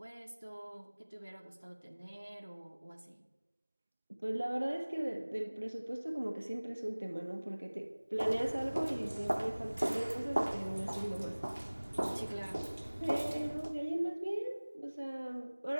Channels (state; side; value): inverted; both; correlation -1.00